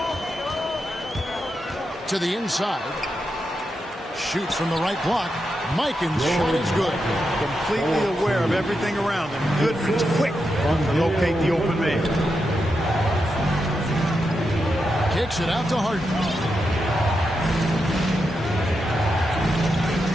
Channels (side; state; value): both; normal; correlation 0.86